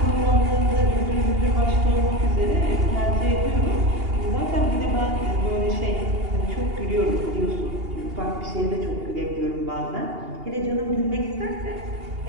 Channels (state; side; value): late; left; 2.8 ms